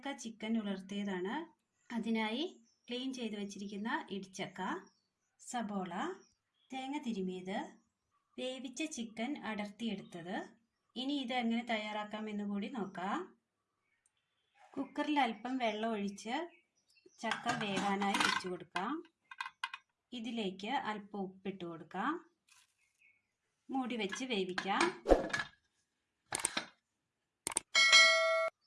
ചിക്കൻ ഉലർത്തിയതാണ്. അതിനായി ക്ലീൻ ചെയ്ത് വെച്ചിരിക്കുന്ന ഇടിച്ചക്ക, സബോള, തേങ്ങ തിരുമിയത്, വേവിച്ച ചിക്കൻ അടർത്തിയെടുത്തത്. ഇനി ഇത് എങ്ങനെ തയ്യാറാക്കാം എന്ന് കൂടി നോക്കാം. കുക്കറിൽ അല്പം വെള്ളം ഒഴിച്ച് ചക്ക വേകാനായി വെച്ചു കൊടുക്കാം. ഇതിലേക്ക് അല്പം ഉപ്പിട്ട് കൊടുക്കാം. മൂടി വെച്ച് വേവിക്കാം.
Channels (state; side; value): identical; both; correlation 1.00